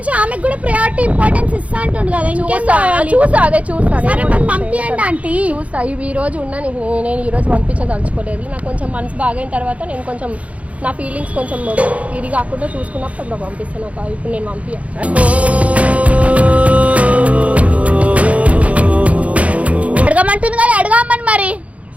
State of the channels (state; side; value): late; left; 0.065 ms